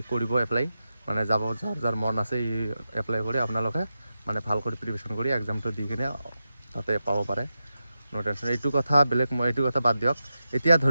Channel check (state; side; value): inverted; both; correlation -0.90